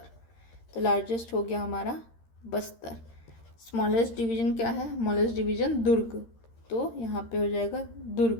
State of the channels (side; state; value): right; late; 13 ms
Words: तो लार्जेस्ट हो गया हमारा बस्तर। स्मॉलेस्ट डिवीजन क्या है, स्मॉलेस्ट डिवीजन दुर्ग, तो यहाँ पे हो जाएगा